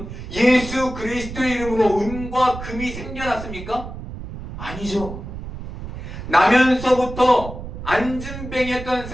예수 그리스도의 이름으로 은과 금이 생겨났습니까? 아니죠. 나면서부터 안진뱅이였던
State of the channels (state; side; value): noise; right; rumble, 10 dB below the sound